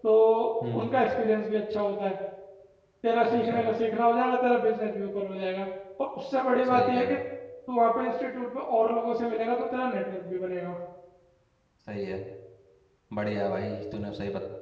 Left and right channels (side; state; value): both; identical; correlation 1.00